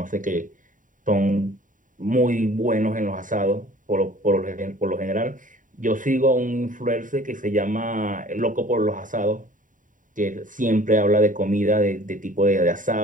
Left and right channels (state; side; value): late; left; 0.38 ms